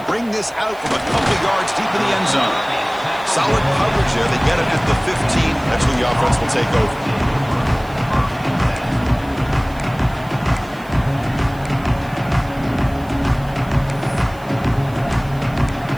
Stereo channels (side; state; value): right; noise; hiss, 25 dB below the sound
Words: bring this out from a couple yards deep in the end zone. Solid coverage there. They get it at the 15. That's where the offense will take over.